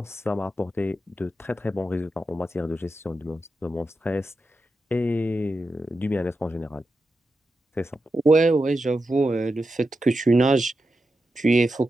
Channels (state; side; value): normal; both; correlation 0.89